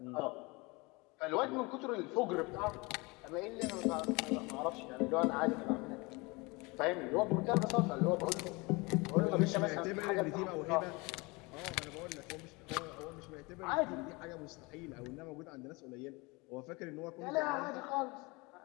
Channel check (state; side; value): quieter; right; 25.9 dB